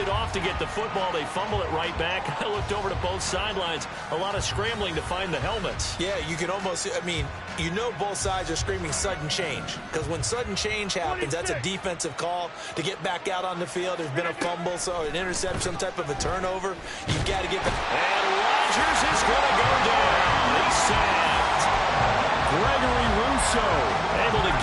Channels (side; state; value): both; identical; correlation 1.00